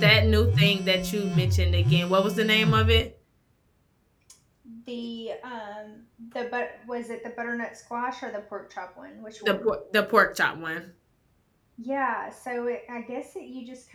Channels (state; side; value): identical; both; correlation 1.00